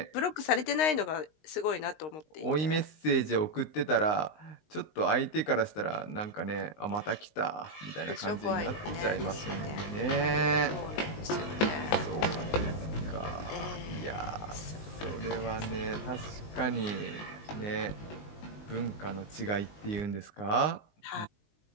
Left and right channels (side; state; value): right; late; 19 ms